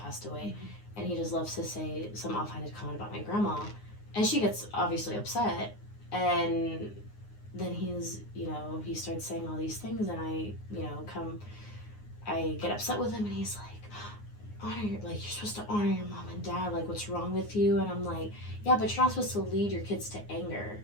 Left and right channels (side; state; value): right; late; 9.6 ms